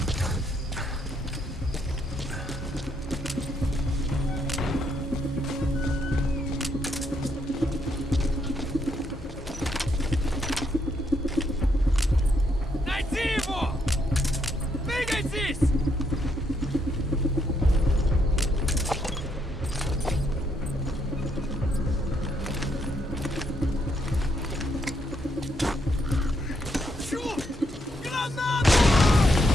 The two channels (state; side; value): normal; both; correlation 0.75